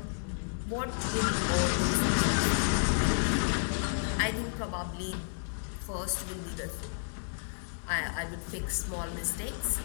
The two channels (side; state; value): right; silent; digital silence